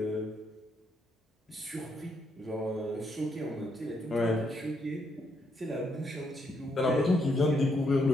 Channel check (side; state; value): both; normal; correlation 0.76